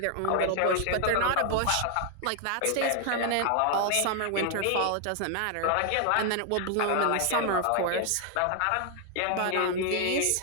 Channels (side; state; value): both; different; correlation 0.00